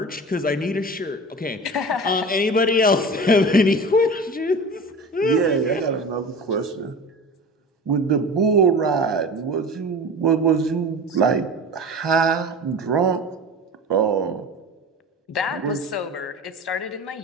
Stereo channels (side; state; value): both; normal; correlation 0.34